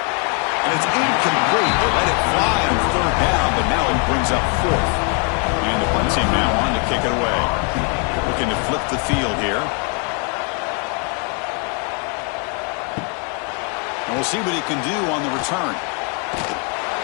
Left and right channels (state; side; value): quieter; right; 37.0 dB